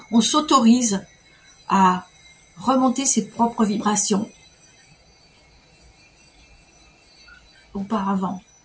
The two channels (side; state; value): both; identical; correlation 1.00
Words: on s'autorise à remonter ses propres vibrations auparavant.